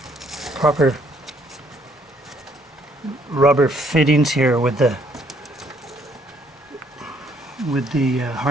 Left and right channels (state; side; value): normal; both; correlation 0.66